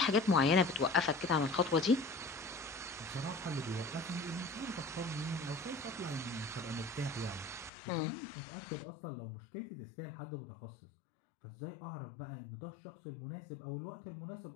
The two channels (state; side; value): drops out; right; at 7.7 s